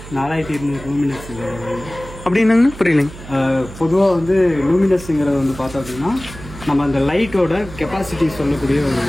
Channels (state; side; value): noise; right; hum, 15 dB below the sound